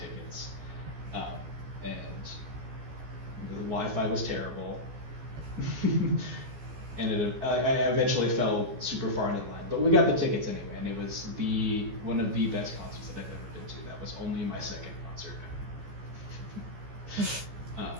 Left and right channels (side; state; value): left; late; 14 ms